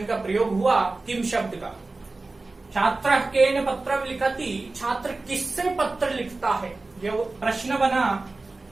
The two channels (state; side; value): quieter; left; 3.4 dB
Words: का प्रयोग हुआ किम शब्द का। छात्र केन पत्रम लिखति, छात्र किससे पत्र लिखता है, ये प्रश्न बना,